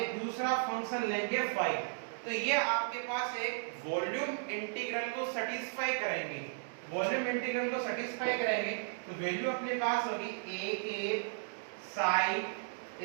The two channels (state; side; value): silent; left; digital silence